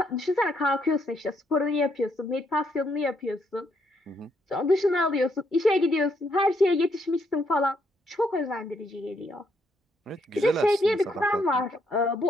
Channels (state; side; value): normal; both; correlation 0.74